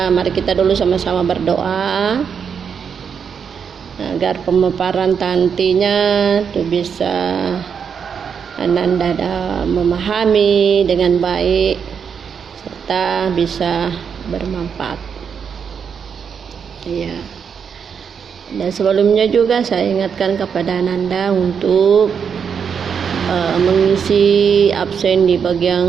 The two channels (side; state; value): left; quieter; 6.9 dB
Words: mari kita dulu sama-sama berdoa agar pemaparan nantinya itu bisa Ananda memahami dengan baik serta bisa bermanfaat. Ya. Dan sebelumnya juga saya ingatkan kepada Ananda untuk mengisi absen di